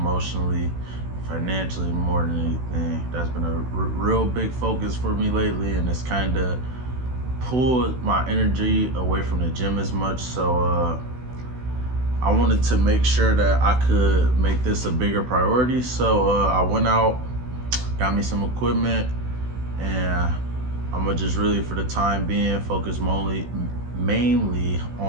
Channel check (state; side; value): late; left; 16 ms